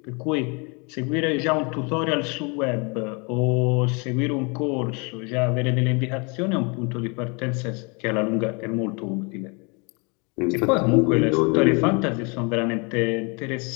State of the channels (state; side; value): quieter; right; 31.8 dB